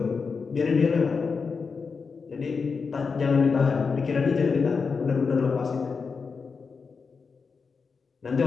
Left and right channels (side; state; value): right; quieter; 5.1 dB